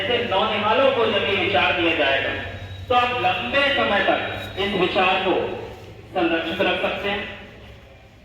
नौनिहालों को जब ये विचार दिया जाएगा तो आप लंबे समय तक इस विचार को संरक्षित रख सकते हैं,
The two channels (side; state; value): both; identical; correlation 1.00